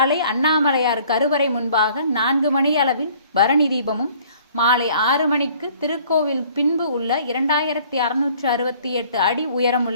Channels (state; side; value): inverted; both; correlation -0.55